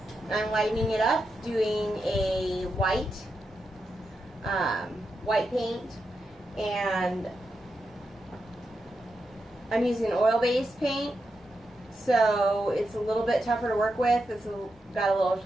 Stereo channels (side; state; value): both; normal; correlation 0.87